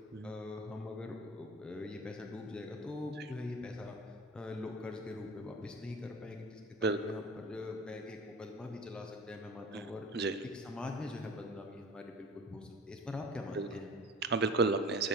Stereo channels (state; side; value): normal; both; correlation 0.39